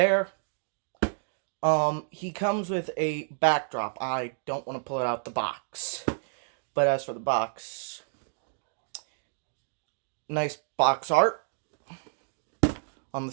He comes with a backdrop. I don't want to pull it out the box. But as for the box, nice box art on the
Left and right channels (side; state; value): left; silent; digital silence